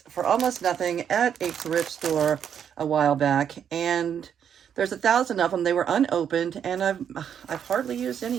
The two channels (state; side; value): quieter; left; 8.5 dB